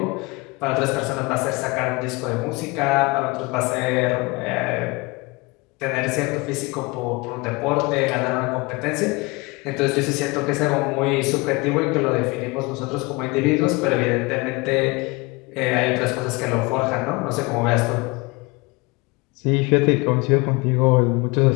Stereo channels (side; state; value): right; quieter; 25.2 dB